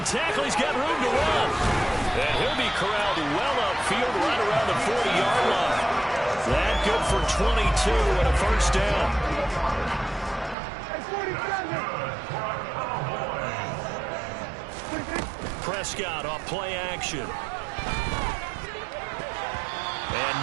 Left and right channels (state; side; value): drops out; left; at 10.6 s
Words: tackle. He's got room to run. And he'll be corralled well upfield right around the 40-yard line. That good for 22 and a 1st down. Prescott off play action.